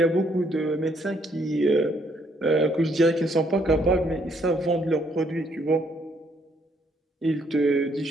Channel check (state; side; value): normal; both; correlation 0.69